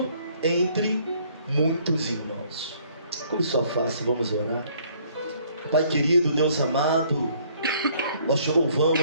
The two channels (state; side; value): inverted; both; correlation -0.62